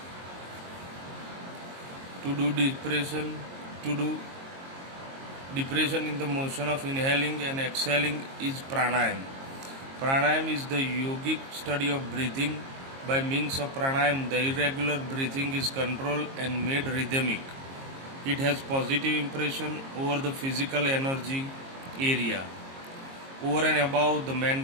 To do depression in the motion of inhaling and exhaling is pranayam. Pranayam is the yogic study of breathing. By means of pranayam, the irregular breathing is controlled and made rhythmic. It has positive impression over the physical energy area. Over and above, the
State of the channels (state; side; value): late; left; 22 ms